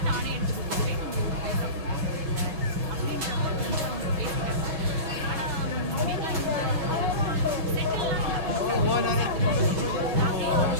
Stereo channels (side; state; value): left; late; 6.1 ms